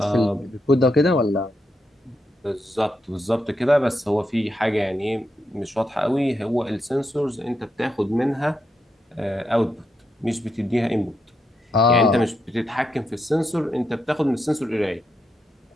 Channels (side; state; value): both; normal; correlation 0.82